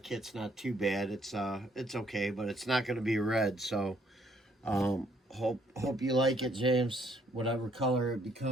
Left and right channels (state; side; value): normal; both; correlation 0.67